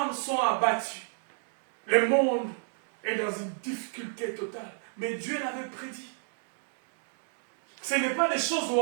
sont abattues. Le monde est dans une difficulté totale. Mais Dieu l'avait prédit. Ce n'est pas des choses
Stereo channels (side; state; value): left; silent; 57 dB below the other